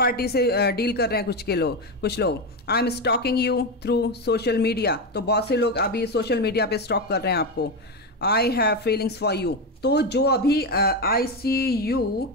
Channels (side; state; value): both; normal; correlation 0.13